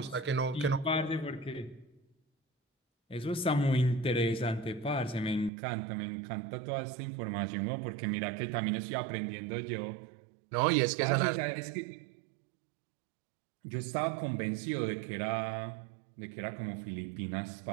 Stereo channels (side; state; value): left; drops out; at 5.5 s